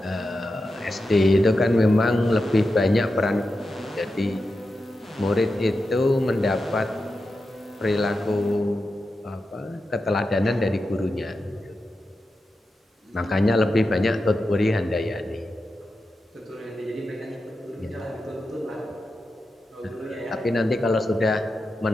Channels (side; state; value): both; normal; correlation 0.90